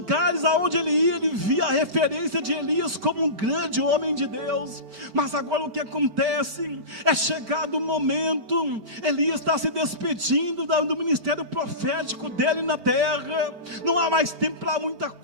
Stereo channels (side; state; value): left; late; 4.4 ms